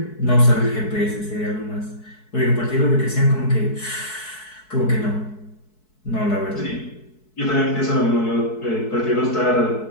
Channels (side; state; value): right; late; 4.7 ms